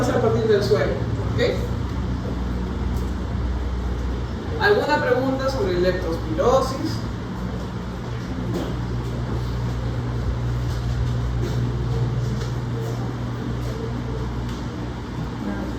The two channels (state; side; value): identical; both; correlation 1.00